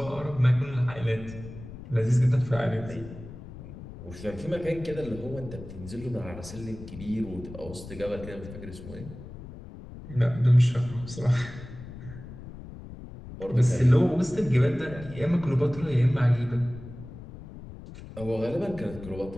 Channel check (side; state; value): left; noise; rumble, 14 dB below the sound